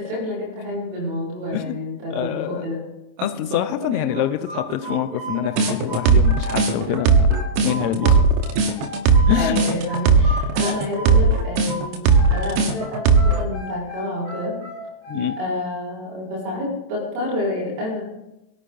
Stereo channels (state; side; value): late; left; 27 ms